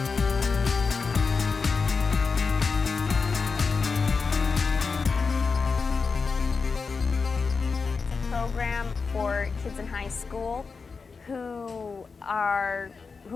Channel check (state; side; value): quieter; right; 4.8 dB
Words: Program for kids in high school who